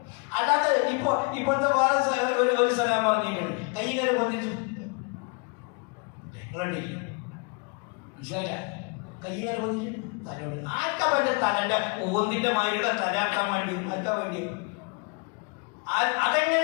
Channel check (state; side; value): quieter; right; 31.6 dB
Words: അല്ലാതെ ഇപ്പോഴത്തെ വേറെ ഒരു സലാം പറഞ്ഞിട്ടുണ്ട്, കൈകാര്യം പൊന്തിച്ചു. മനസ്സിലായില്ല? കൈകാര്യം പൊന്തിച്ചു തലോട് ആർക്കാ പറ്റ തലന്റെ ഓന്തിന്റെ മാതിരിയുടെ തലാക്കാൻ വേണ്ടി ആർക്കാ വേണ്ടി?